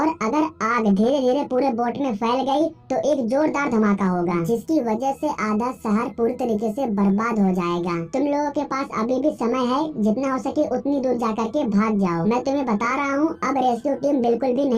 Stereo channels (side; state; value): both; identical; correlation 1.00